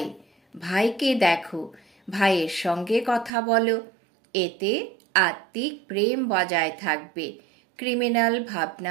ভাইকে দেখো, ভাইয়ের সঙ্গে কথা বলো। এতে আত্মিক প্রেম বজায় থাকবে, ক্রিমিনাল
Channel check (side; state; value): left; drops out; at 3.3 s